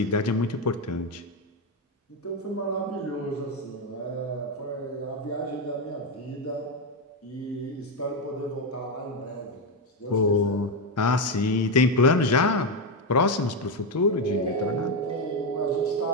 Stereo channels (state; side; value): normal; both; correlation 0.07